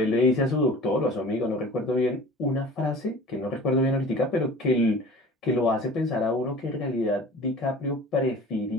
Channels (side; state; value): both; normal; correlation 0.42